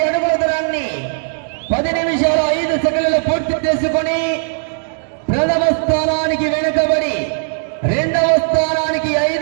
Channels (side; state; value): left; silent; digital silence